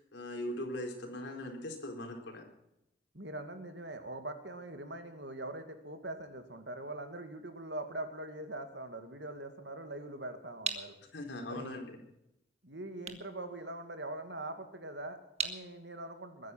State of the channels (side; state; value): both; normal; correlation -0.03